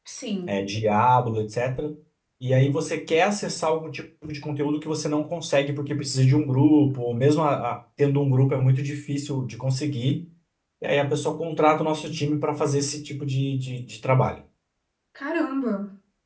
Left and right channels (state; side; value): identical; both; correlation 1.00